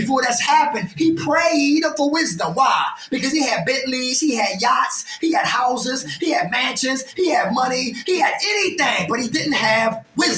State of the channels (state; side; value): identical; both; correlation 1.00